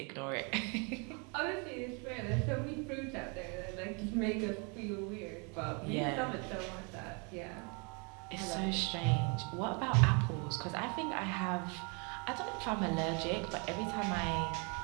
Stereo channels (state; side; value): quieter; left; 33.8 dB